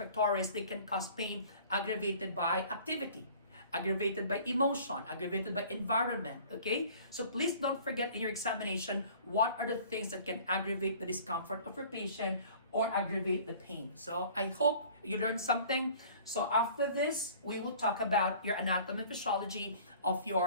they can cause pain aggravated by activity, aggravated by emotion, aggravated by environment, okay? So please don't forget in your examination, what are the things that can aggravate the discomfort of your patient or aggravate the pain. So I hope you learned something. So after this, we will talk about your anatomy and physiology of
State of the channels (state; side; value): inverted; both; correlation -0.48